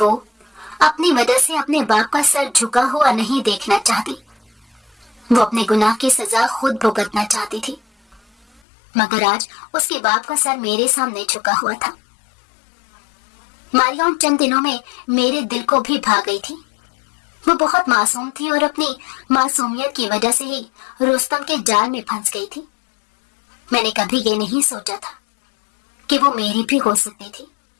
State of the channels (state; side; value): drops out; right; at 8.6 s